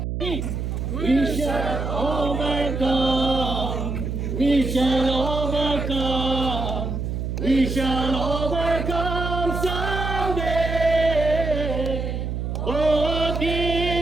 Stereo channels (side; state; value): right; noise; hum, 3 dB below the sound